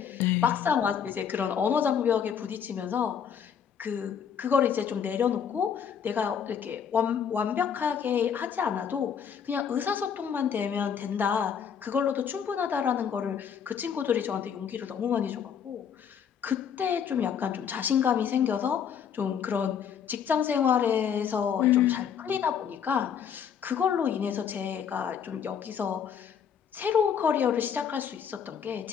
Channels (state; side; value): quieter; right; 7.8 dB